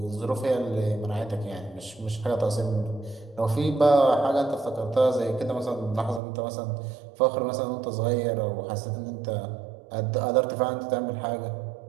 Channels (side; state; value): left; drops out; at 6.2 s